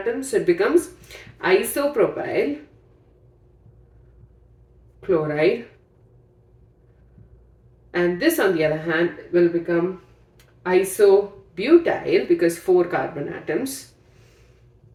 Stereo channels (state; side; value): identical; both; correlation 1.00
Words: so it becomes isopropyl chloride, and this on the other hand will become isobutyl because 4 carbon atoms